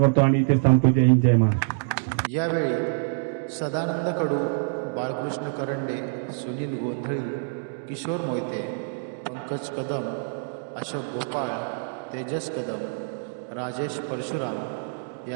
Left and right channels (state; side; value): silent; left; digital silence